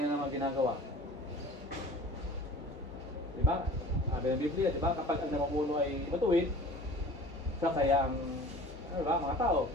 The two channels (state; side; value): normal; both; correlation 0.43